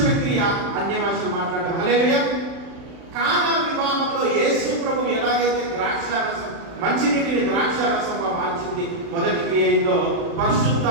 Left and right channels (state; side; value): late; left; 36 ms